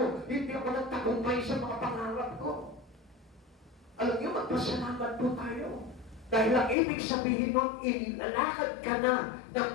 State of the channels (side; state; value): right; drops out; at 6.8 s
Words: hindi ako nagtagumpay sa mga pangarap ko. Alam niyo, magpasalamat po tayo. Dahil ang ibig sabihin nun, inilalakad ka na ng